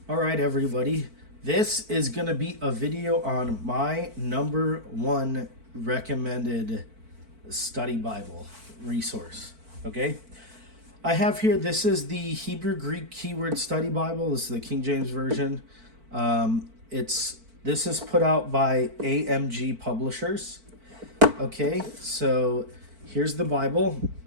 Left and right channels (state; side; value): late; left; 4.5 ms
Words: All right, everybody. This is going to be a video on my number one recommended study Bible resource. Okay. I have here, this is the Hebrew Greek Keyword Study Bible. This is the King James Version. This is put out by AMG Publishers. Okay. So here's the Bible.